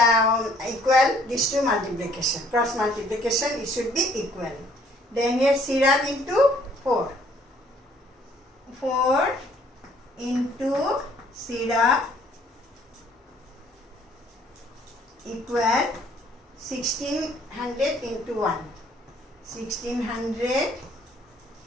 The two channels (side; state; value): both; normal; correlation 0.61